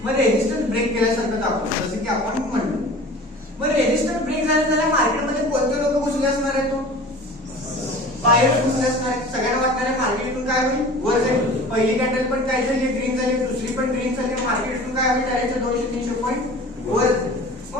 मग रेजिस्टन्स ब्रेक केल्यासारखं दाखवलं, जसं की आपण म्हणलो. मग रेजिस्टन्स ब्रेक झाल्या मार्केटमध्ये कोणते लोक घुसले असणार आहेत, बाहेर घुसले असणार आहेत. सगळ्यांना वाटणार आहे मार्केट इथून काय होईल, वर जाईल. पहिली कॅन्डल पण काय झाली, ग्रीन झाली, दुसरी पण ग्रीन झाली. मार्केट इथून काय होईल, डायरेक्ट 200-300 पॉईंट वर.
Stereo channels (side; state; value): both; normal; correlation 0.41